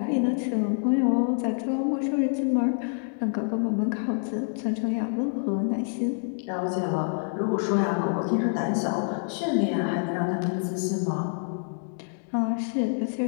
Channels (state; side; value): silent; right; 60 dB below the other